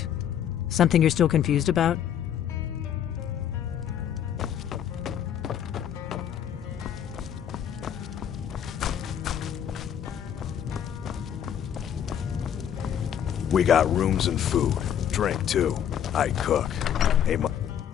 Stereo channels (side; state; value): right; quieter; 9.3 dB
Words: Something you're still confused about? We got rooms and food. Drink, too. I cook. Hey,